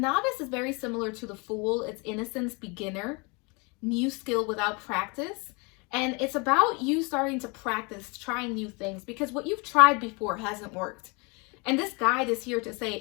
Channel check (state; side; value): quieter; right; 30.2 dB